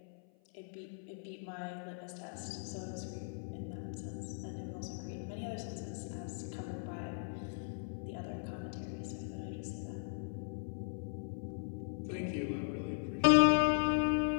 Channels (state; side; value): silent; right; 52 dB below the other